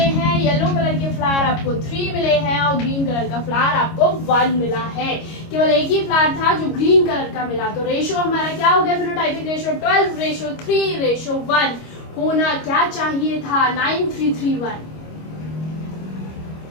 हैं, येलो कलर के फ्लावर आपको 3 मिले हैं और ग्रीन कलर का फ्लावर आपको 1 मिला है। केवल एक ही फ्लावर था जो ग्रीन कलर का मिला। तो रेशो हमारा क्या हो गया, फिनोटाइपिक रेशो 12:3:1 होना क्या चाहिए था, 9331,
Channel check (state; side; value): late; right; 25 ms